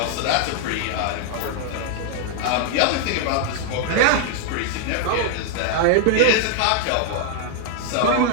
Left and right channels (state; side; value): different; both; correlation -0.01